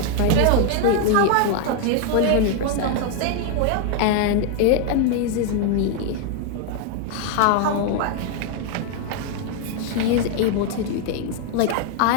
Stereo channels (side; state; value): both; different; correlation 0.00